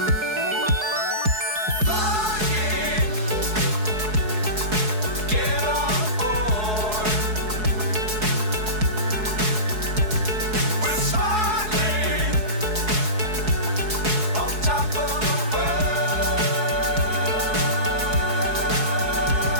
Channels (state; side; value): late; left; 4.7 ms